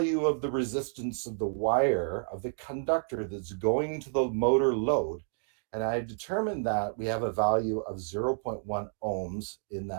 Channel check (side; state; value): left; silent; digital silence